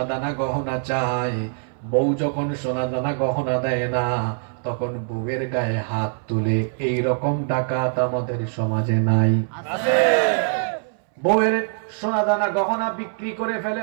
দানা গহনা চায়, বউ যখন সোনা দানা গহনা দেয় না, তখন বউয়ের গায়ে হাত তুলে। এই রকম ডাকাত আমাদের সমাজে নাই? বউয়ের সোনা দানা গহনা বিক্রি করে ফেলে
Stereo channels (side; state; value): left; silent; 60 dB below the other